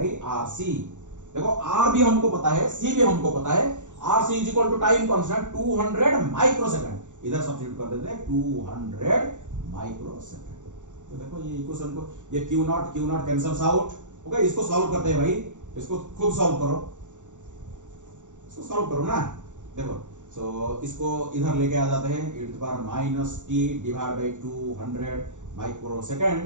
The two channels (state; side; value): late; left; 0.86 ms